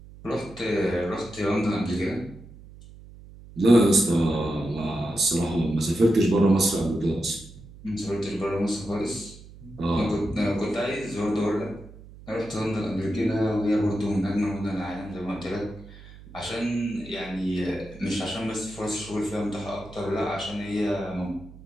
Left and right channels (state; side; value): noise; right; hum, 19 dB below the sound